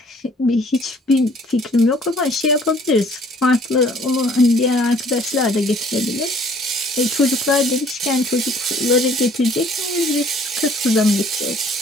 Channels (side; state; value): both; normal; correlation 0.57